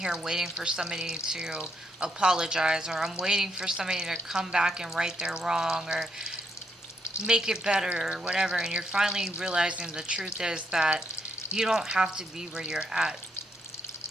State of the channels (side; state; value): both; normal; correlation 0.76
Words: waiting for somebody to apologize, or I'm waiting for somebody to come back and right their wrong, or make it better, or whatever. And you're finally realizing the truth is that you don't have to be where you're at.